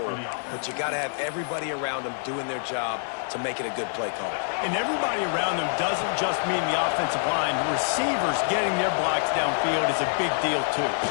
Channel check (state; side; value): silent; right; 61 dB below the other